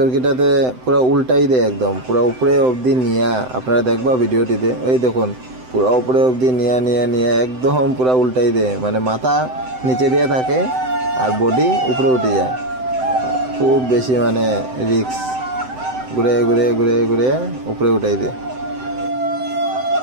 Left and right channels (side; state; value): left; late; 7.8 ms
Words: পুরো উল্টাই দেয়, একদম পুরো উপরে অবধি নিয়া। আপনারা দেখবা ভিডিওটিতে, ওই দেখুন পুরো উপরে অবধি নিয়ে একদম পুরো উল্টাই দেয়। মানে মাথা নিচে দিয়ে থাকে আর বডি উপরে উঠে যায়। খুব বেশি মানে রিস্ক, ঘুরে উপরে উঠাই দেয়।